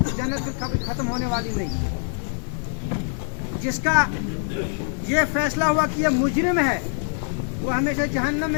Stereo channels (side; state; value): right; silent; 63 dB below the other